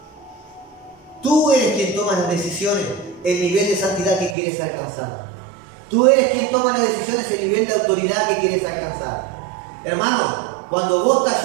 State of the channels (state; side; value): drops out; left; at 4.4 s